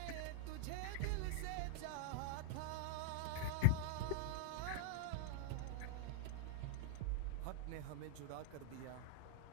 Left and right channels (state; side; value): different; both; correlation 0.00